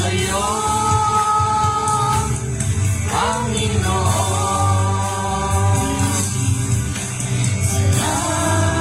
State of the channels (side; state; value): both; identical; correlation 1.00